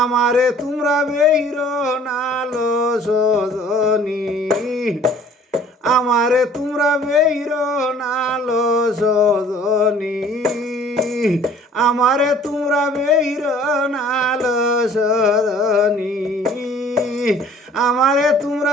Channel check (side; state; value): both; normal; correlation 0.52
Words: আমারে তোমরা বেইর নালো সজনী, আমারে তোমরা বেইর নালো সজনী, আমারে তোমরা বেইর নালো সজনী, আমারে